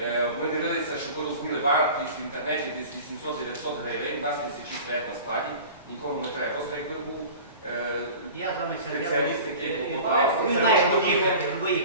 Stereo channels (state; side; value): inverted; both; correlation -0.39